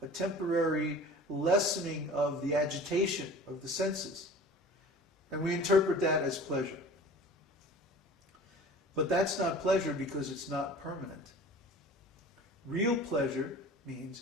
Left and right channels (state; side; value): normal; both; correlation 0.42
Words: a temporary lessening of the agitation of the senses. And we interpret that as pleasure. But that's not pleasure because it's not permanent. Real pleasure